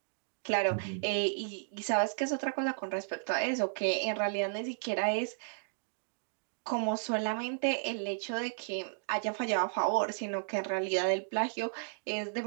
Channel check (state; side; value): silent; left; digital silence